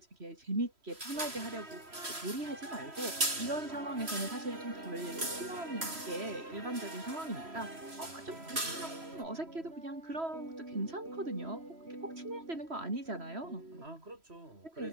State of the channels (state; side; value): late; left; 3.1 ms